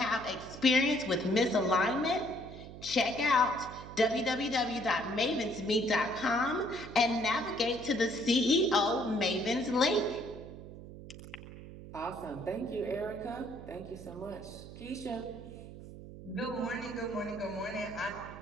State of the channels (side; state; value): right; noise; hum, 14 dB below the sound